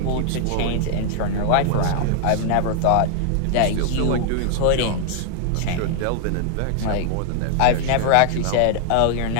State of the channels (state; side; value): different; both; correlation 0.00